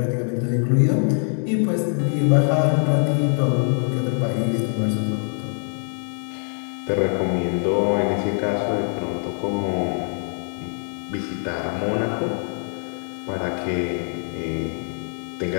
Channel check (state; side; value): silent; right; 57 dB below the other